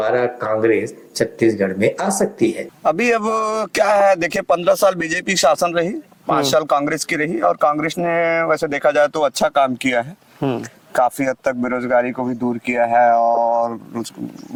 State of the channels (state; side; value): identical; both; correlation 1.00